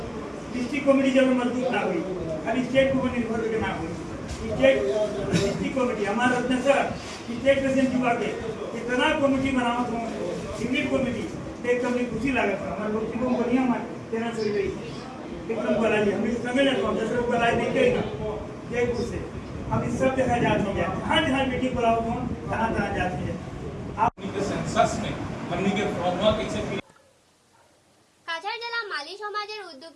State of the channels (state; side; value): identical; both; correlation 1.00